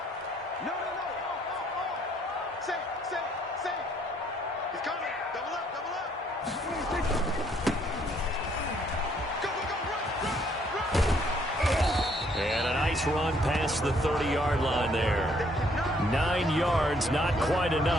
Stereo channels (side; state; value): both; normal; correlation 0.66